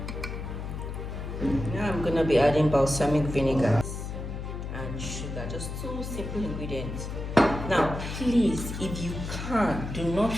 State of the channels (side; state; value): left; noise; hum, 6 dB below the sound